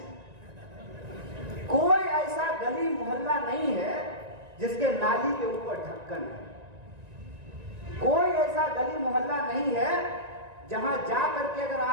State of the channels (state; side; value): late; left; 1.9 ms